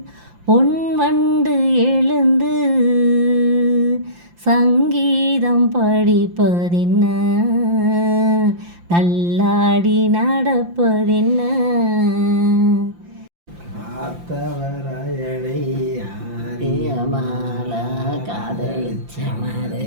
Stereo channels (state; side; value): late; left; 5.8 ms